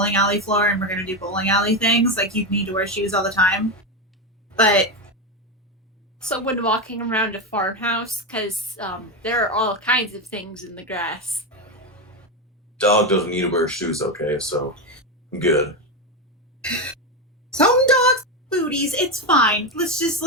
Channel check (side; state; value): both; normal; correlation 0.12